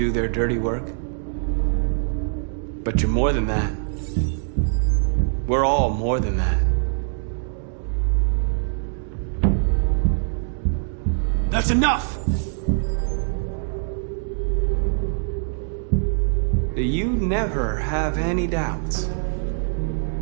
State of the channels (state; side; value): silent; left; digital silence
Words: their dirty work. But you're more than that. We're all more than that. That's enough! You never have any doubts.